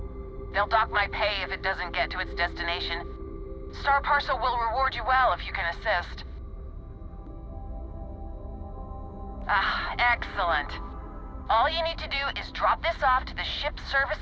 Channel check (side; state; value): both; identical; correlation 1.00